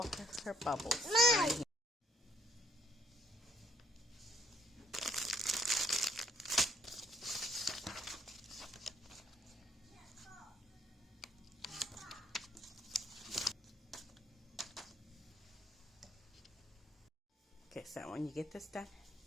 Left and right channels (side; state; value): both; normal; correlation 0.68